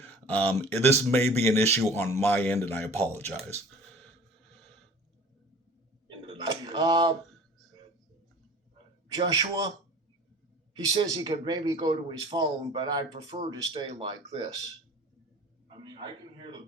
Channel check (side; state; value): both; normal; correlation 0.44